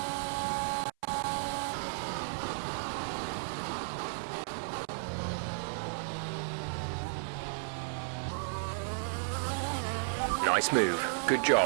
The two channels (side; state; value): left; silent; 55 dB below the other